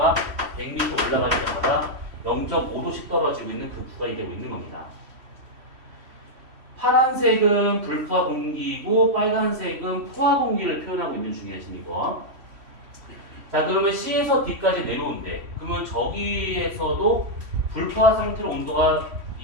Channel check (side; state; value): left; late; 3.1 ms